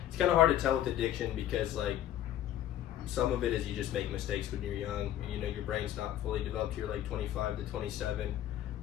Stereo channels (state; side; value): quieter; right; 12.1 dB